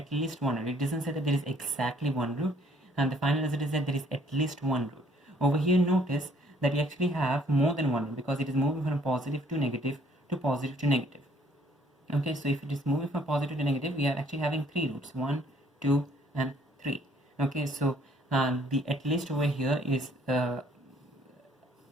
least one root. It doesn't say that there is exactly one root, and the final result is that there is at least one root. Over here, notice that we actually have more than one root because it is moving from positive to negative to positive to negative. Okay, so if it is moving from positive to negative, we are actually having three roots: 1, 2, and 3. Okay, so the at least over here is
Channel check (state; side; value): normal; both; correlation 0.61